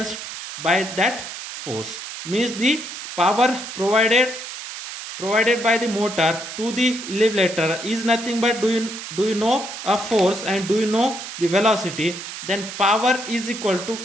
by that force, means the power provided by the motor to the elevator is nothing but, do you know a force and do you know the velocity, then power is equal to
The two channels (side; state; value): right; noise; hiss, 9 dB below the sound